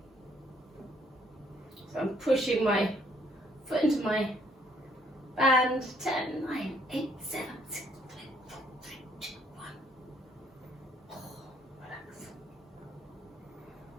So I'm pushing my foot into my band. 10, 9, 8, 7, 6, 5, 4, 3, 2, 1. Oh, relax.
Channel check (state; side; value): normal; both; correlation 0.66